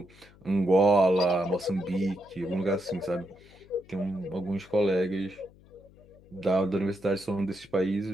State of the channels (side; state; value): left; noise; hum, 25 dB below the sound